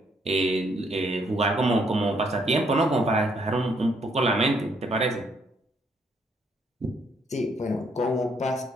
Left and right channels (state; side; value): normal; both; correlation 0.70